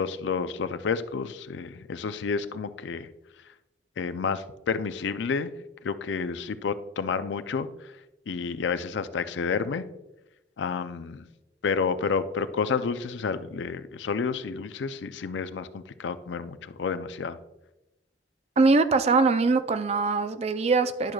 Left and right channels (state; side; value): normal; both; correlation 0.25